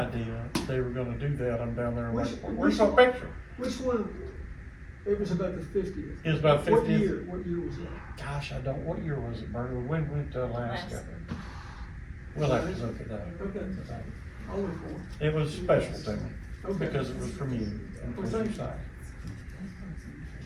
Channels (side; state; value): both; identical; correlation 1.00